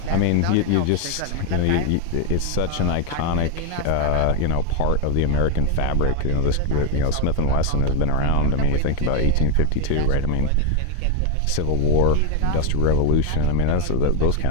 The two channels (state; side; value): different; both; correlation 0.01